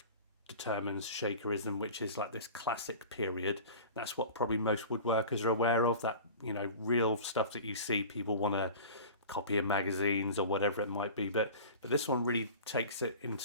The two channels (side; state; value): both; inverted; correlation -0.38